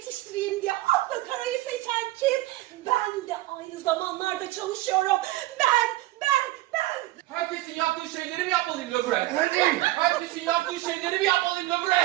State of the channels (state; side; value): quieter; left; 17.7 dB